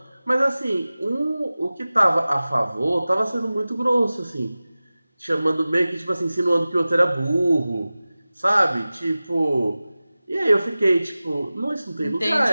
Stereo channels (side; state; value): both; inverted; correlation -0.97